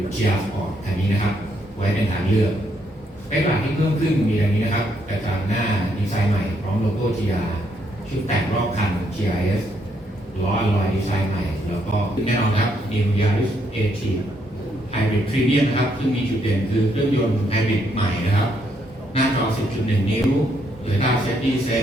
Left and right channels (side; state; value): both; normal; correlation 0.74